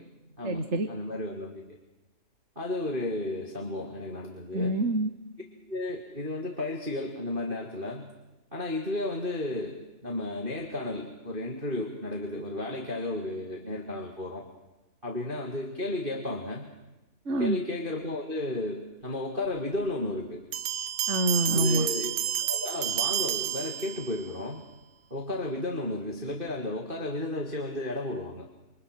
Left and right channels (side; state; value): left; late; 3.5 ms